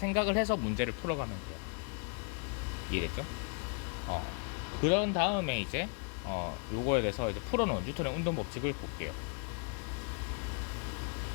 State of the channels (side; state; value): right; quieter; 36.6 dB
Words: 해서 문제를 풀어가면 돼요. 이해됐죠? 그런 다음에 이제 요거에 대해서 이제 풀어놓은 뉴턴의 운동 법칙을 볼게요.